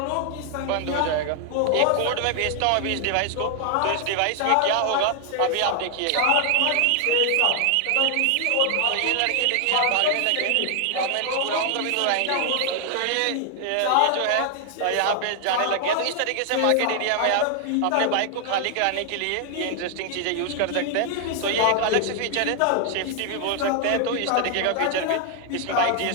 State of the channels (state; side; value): different; both; correlation 0.00